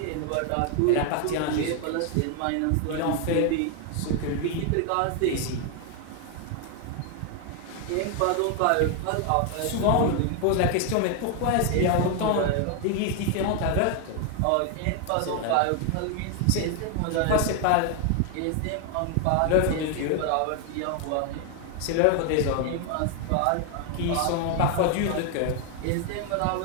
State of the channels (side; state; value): both; different; correlation 0.01